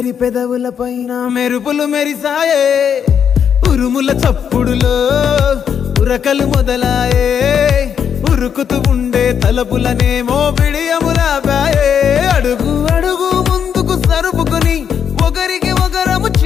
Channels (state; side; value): quieter; right; 7.9 dB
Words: పెదవుల పైన మెరుపులు మెరిసాయే ఉరుముల చప్పుడులో ఉరకలు మొదలాయే ఉరుకుతూ ఉండే తలపులనేమో బిడియములాపాయే అడుగు అడుగు ముందుకు సరుపుకుని ఒకరికి ఒకరము